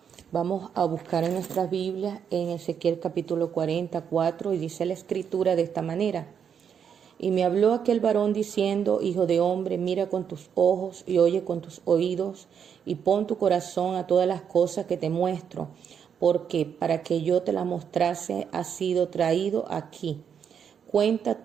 Vamos a buscar en nuestras Biblias en Ezequiel capítulo 44 y dice la escritura de esta manera. Y me habló aquel varón diciendo, hijo de hombre, mira con tus ojos y oye con tus oídos y pon tu corazón a todas las cosas que te muestro, porque para que yo te las mostrase has sido traído aquí.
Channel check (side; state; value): left; quieter; 7.6 dB